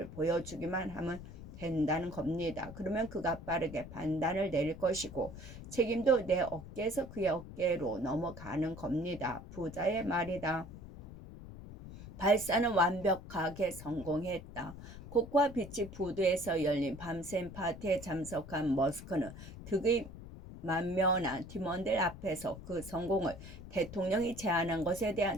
보여주기만 하면 된다는 겁니다. 그러면 그가 빠르게 판단을 내릴 것이고 책임도 내 어깨에서 그의 어깨로 넘어가는 겁니다. 부자의 말이다. 발사는 완벽하게 성공했다. 코코아 비치 푸드에서 열린 밤샘 파티에 참석한 머스크는 득의 만면한 팀원들 앞에서 그 성공을 대통령이 제안한 것에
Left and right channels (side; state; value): left; noise; rumble, 13 dB below the sound